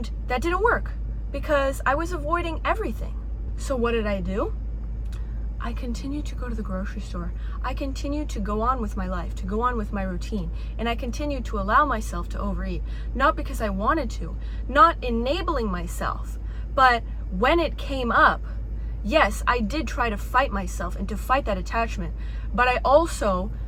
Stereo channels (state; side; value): identical; both; correlation 1.00